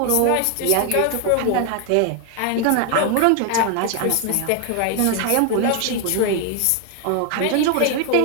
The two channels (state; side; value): different; both; correlation 0.01